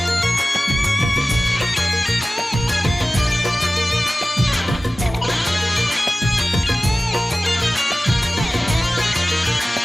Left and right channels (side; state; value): both; normal; correlation 0.97